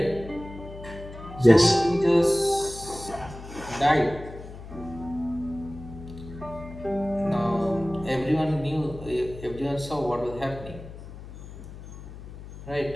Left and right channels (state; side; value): noise; left; hum, 14 dB below the sound